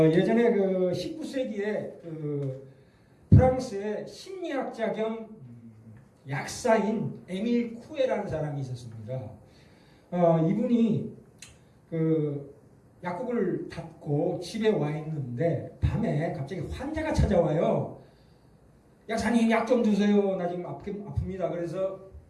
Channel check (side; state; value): both; identical; correlation 1.00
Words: 그 19세기에 그 프랑스의 심리학자 겸 약사인 에밀 쿠에라는 사람이 있었습니다. 이분이 그 약국을 닫고 집에 와 있는데 밤에 갑자기 환자가 찾아와요. 약사님 약 좀 주세요. 나 지금 아픕니다. 그래서